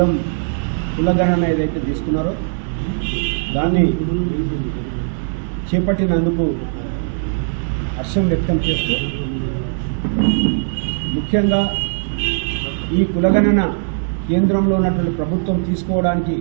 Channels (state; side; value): silent; left; digital silence